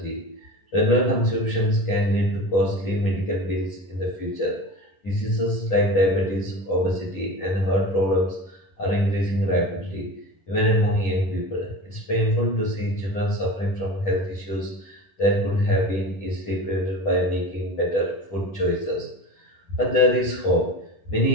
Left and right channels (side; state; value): right; late; 10 ms